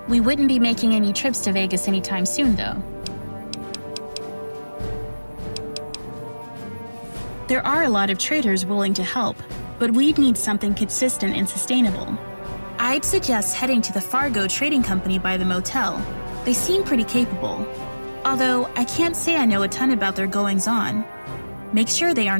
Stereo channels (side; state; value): both; inverted; correlation -1.00